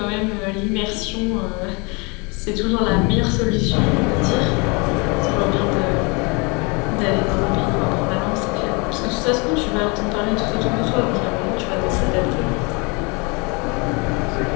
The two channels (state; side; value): quieter; right; 29.9 dB